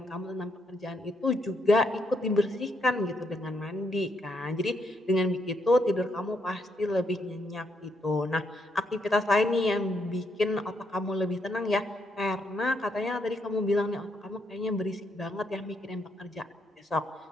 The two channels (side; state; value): both; normal; correlation 0.76